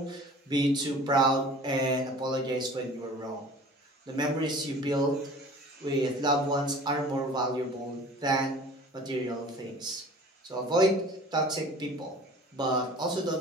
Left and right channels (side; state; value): both; normal; correlation 0.45